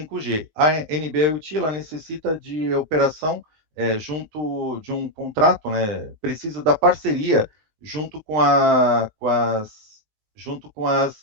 A NB-IoT ela necessita de operação junto de um contrato, né? Precisa da parceria junto com as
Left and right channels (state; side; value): late; left; 19 ms